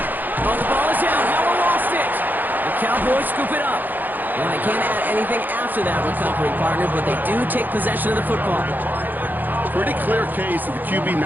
Oh, the ball is out. No one lost it. The Cowboys scoop it up. Well, they can't add anything after that recovery, partner, but they do take possession of the football. Pretty clear case of the QB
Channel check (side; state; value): left; late; 0.087 ms